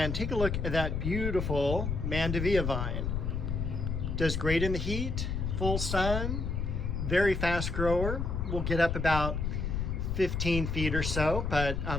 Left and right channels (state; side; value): noise; left; rumble, 1 dB below the sound